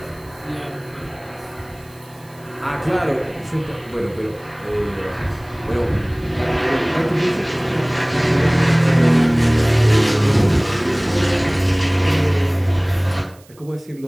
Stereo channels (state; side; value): noise; right; hiss, 28 dB below the sound